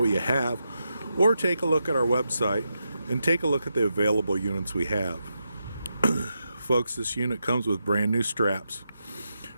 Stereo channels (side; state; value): both; inverted; correlation -0.86